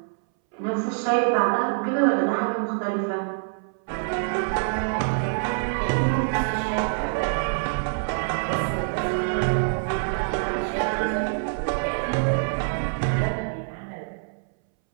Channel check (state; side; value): silent; left; 61 dB below the other